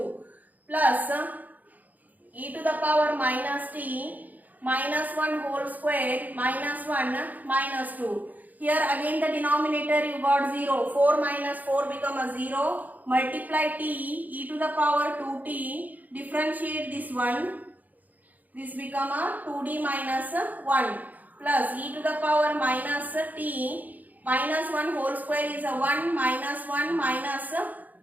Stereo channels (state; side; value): late; left; 0.081 ms